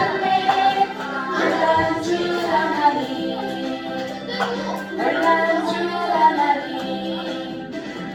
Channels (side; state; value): both; identical; correlation 1.00